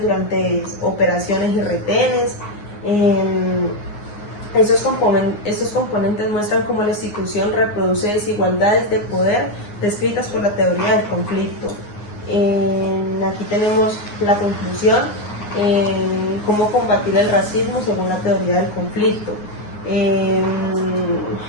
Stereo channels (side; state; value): right; late; 9.6 ms